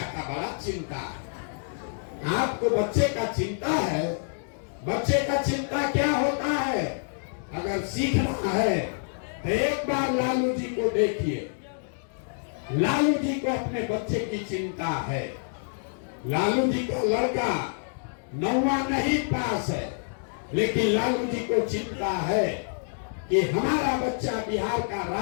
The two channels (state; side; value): silent; right; digital silence